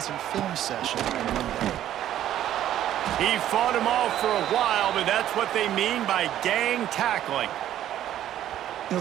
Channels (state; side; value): quieter; left; 11.9 dB